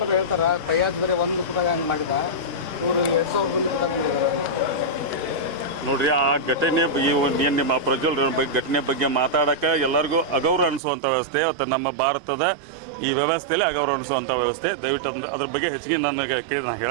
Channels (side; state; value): left; drops out; at 10.8 s